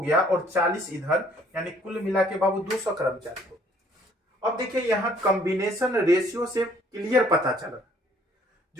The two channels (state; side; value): normal; both; correlation 0.60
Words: और 40 इधर, यानी कुल मिला के बाबू 200 कर्मचारी हो। अब देखिए यहां कॉम्बिनेशन रेशियो से क्लियर पता चला,